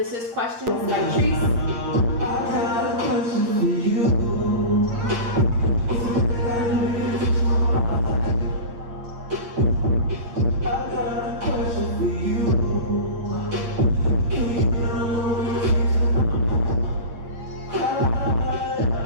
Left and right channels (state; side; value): late; left; 8.8 ms